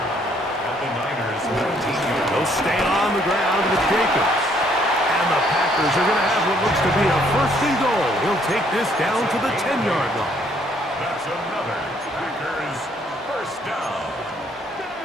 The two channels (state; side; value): normal; both; correlation 0.66